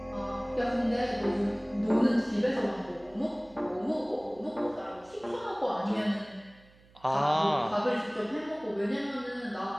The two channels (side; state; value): right; noise; hum, 27 dB below the sound